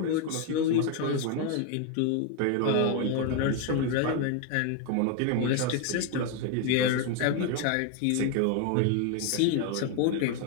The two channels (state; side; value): different; both; correlation 0.01